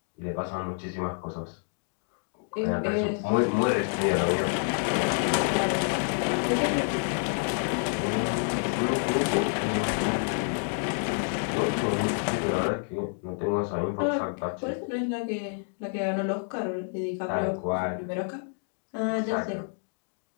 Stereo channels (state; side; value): silent; right; 59 dB below the other